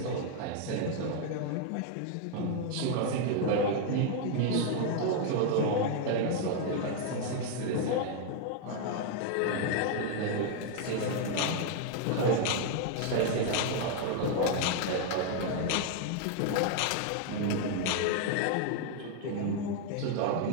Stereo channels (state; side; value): different; both; correlation 0.00